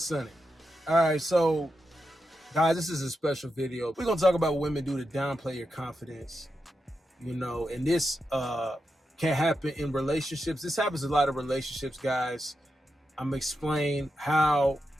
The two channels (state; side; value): normal; both; correlation 0.87